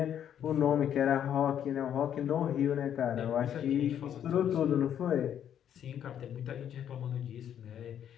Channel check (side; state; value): right; quieter; 9.6 dB